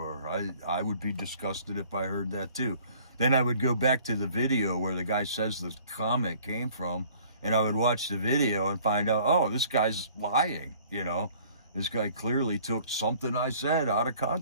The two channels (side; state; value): both; inverted; correlation -0.54